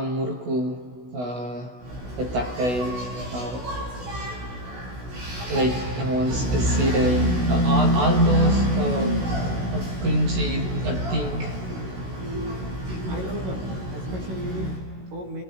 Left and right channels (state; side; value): late; left; 16 ms